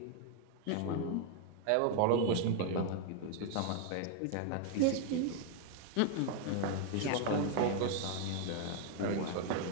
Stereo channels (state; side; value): different; both; correlation 0.00